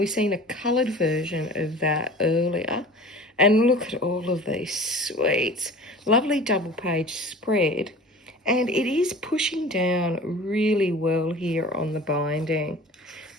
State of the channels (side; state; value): both; normal; correlation 0.41